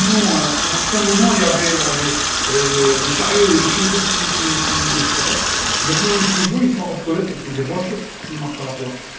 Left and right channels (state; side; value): identical; both; correlation 1.00